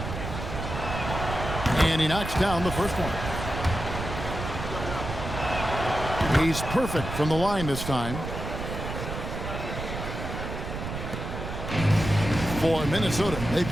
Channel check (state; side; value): noise; right; rumble, 6 dB below the sound